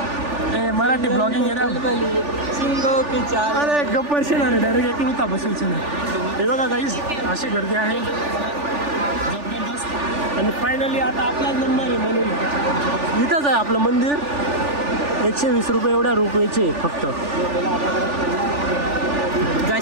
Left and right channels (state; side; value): late; left; 3.4 ms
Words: ए मराठी ब्लॉगिंग अरे गप्पर शेणार डायरेक्ट एक होता बसून हे बघा काहीच अशी गर्दी आहे जबरदस्त. आणि फायनली आता आपला नंबर आहे म्हणून इथंच आहे आपलं मंदिर. 120 रुपये एवढ्या रुपयाचे फक्त.